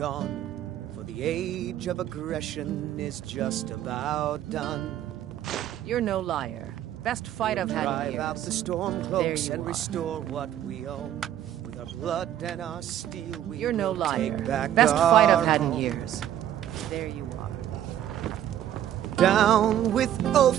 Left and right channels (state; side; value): quieter; left; 11.4 dB